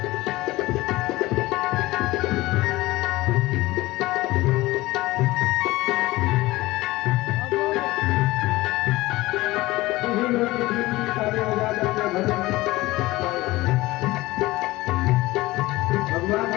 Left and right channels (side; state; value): right; quieter; 19.1 dB